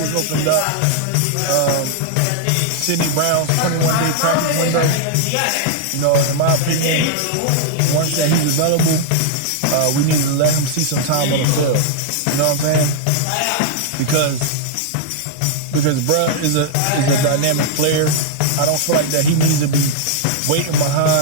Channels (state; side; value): different; both; correlation -0.01